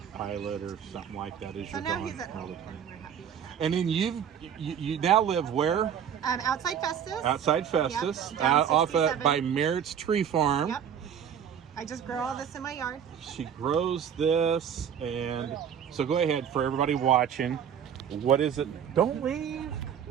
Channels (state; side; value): quieter; left; 8.5 dB